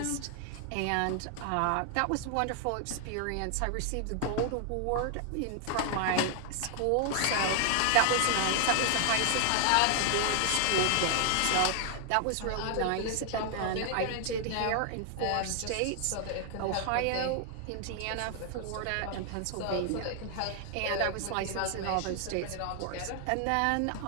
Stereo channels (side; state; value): both; different; correlation 0.00